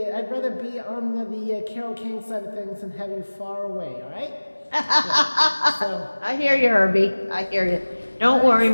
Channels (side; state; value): both; inverted; correlation -1.00